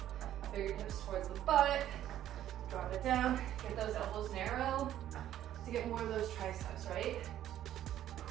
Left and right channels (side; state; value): left; quieter; 11.9 dB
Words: Fingertips towards the butt. Drop it down. Get those elbows narrow to get more of those triceps, right?